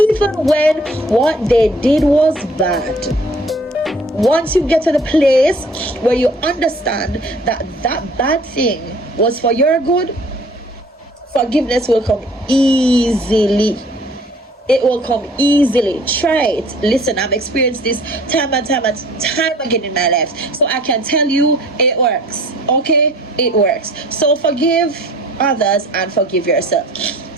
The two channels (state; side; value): normal; both; correlation 0.51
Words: when what they did was bad, once you get to the place where you understand that that bad thing was for your good, forgiveness will come easily. It will come easily. Try it. Listen, I've experienced this time and time again in my life, so I can tell you it works. Okay, it works. So forgive others and forgive yourself.